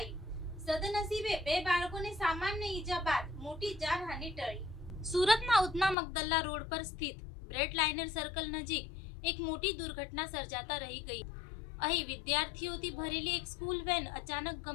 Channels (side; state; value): right; drops out; at 6.0 s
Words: સદનસીબે બે બાળકોને સામાન્ય ઈજા બાદ મોટી જાનહાનિ ટળી. સુરતના ઉધના મગદલ્લા રોડ પર સ્થિત બ્રેડ લાઇનર સર્કલ નજીક એક મોટી દુર્ઘટના સર્જાતા રહી ગઈ. અહીં વિદ્યાર્થીઓથી ભરેલી એક સ્કૂલ વેન અચાનક